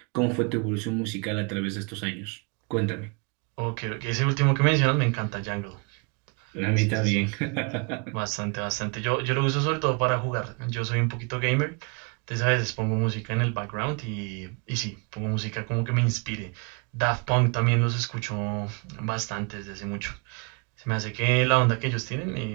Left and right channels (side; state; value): left; quieter; 34.0 dB